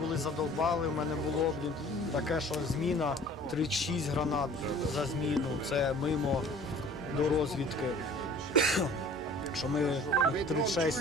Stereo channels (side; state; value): both; normal; correlation 0.48